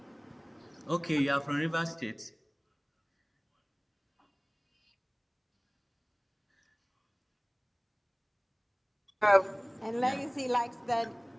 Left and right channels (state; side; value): identical; both; correlation 1.00